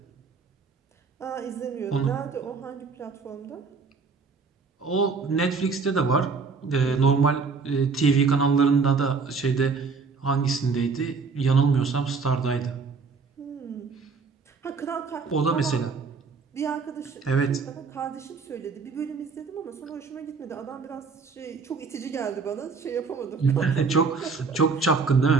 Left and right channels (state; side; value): quieter; left; 4.8 dB